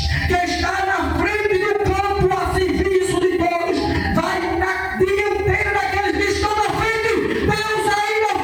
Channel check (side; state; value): both; identical; correlation 1.00